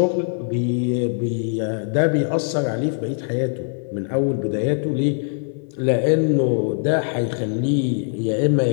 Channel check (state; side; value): silent; right; digital silence